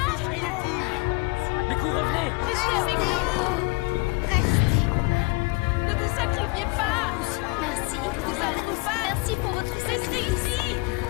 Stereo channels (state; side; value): quieter; right; 27.1 dB